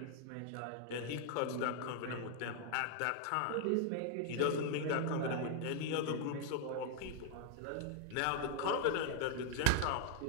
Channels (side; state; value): both; different; correlation 0.00